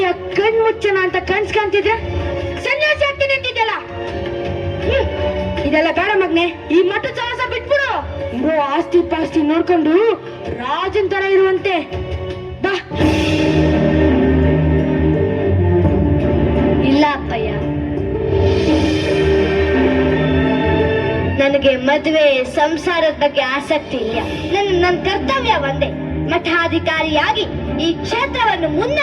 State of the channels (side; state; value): both; identical; correlation 1.00